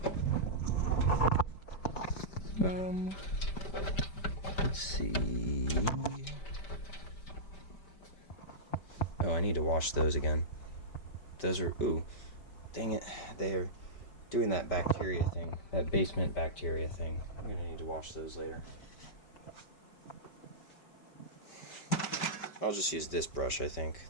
Let's see. Oh, I need to wash those again. Those are, ooh, dang it. They're doing that bacteria thing, that basement bacteria thing. I'm gonna need to wash those later. I'll just use this brush, I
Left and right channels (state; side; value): late; right; 5.1 ms